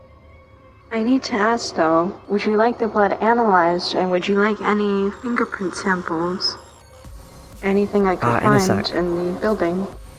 I need to ask though, would you like the blood analyzed and would you like any fingerprint samples? Anything I could In a find sec. in the building?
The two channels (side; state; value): both; identical; correlation 1.00